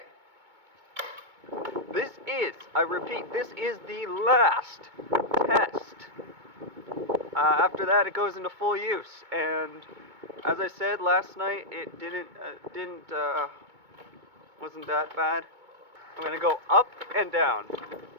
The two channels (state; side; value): late; left; 2.2 ms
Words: This is, I repeat, this is the last test. After that, it goes into full use. And as I said last night, it wasn't that bad. I'm going to go up and down.